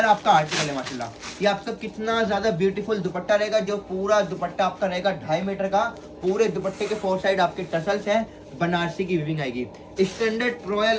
आपका आर्टिकल है माशाल्लाह। ये आपका कितना ज्यादा ब्यूटीफुल दुपट्टा रहेगा, जो पूरा दुपट्टा आपका रहेगा 2.5 मीटर का। पूरे दुपट्टे के 4 साइड आपके टसल्स हैं, बनारसी की वीविंग आएगी। स्टैंडर्ड रॉयल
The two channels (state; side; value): identical; both; correlation 1.00